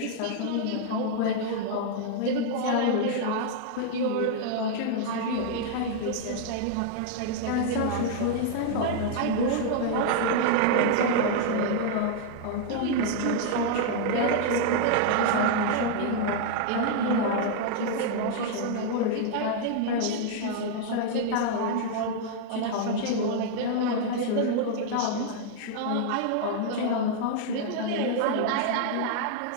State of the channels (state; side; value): different; both; correlation -0.01